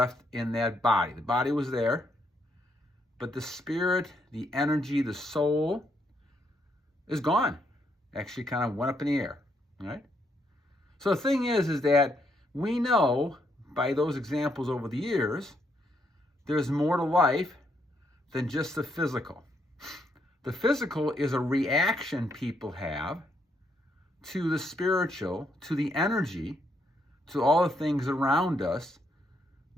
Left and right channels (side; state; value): both; normal; correlation 0.75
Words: in that body. The body was there, but the spirit, the energy, the soul is gone. Actually kind of went up in the air, right? So the thing is that we know by those examples over the years, there's more to life than just the physical. The physical is a reaction people have to the spiritual, to the energy, to all the things around us